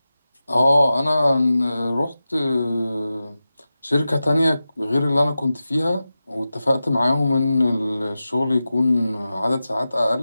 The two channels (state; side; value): inverted; both; correlation -0.94